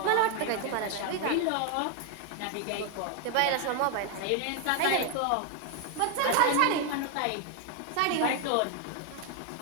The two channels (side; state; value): both; different; correlation 0.01